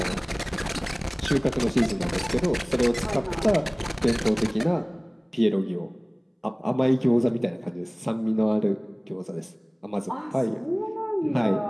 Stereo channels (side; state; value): both; identical; correlation 1.00